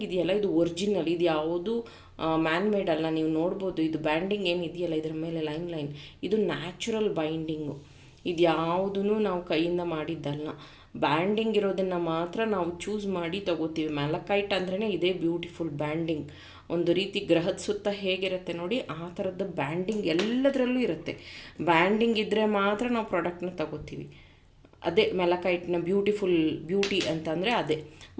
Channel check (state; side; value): identical; both; correlation 1.00